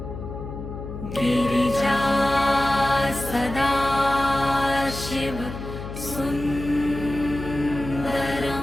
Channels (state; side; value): noise; left; hum, 9 dB below the sound